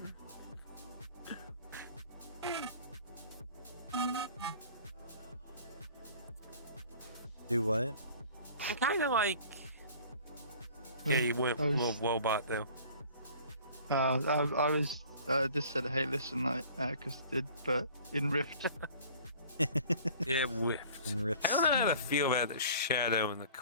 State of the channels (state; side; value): inverted; both; correlation -0.48